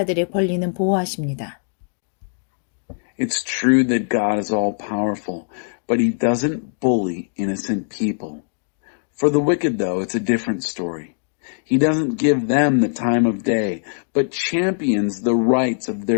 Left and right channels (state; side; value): silent; right; digital silence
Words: 권리는 보호하십니다. It's true that God is all-powerful, but he doesn't bully innocent people. For the wicked, though, it's a different story. He doesn't give them the time of day, but champions the rights of